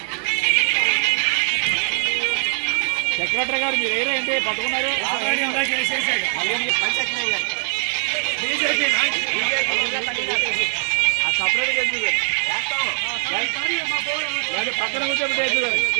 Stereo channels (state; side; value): silent; left; 60 dB below the other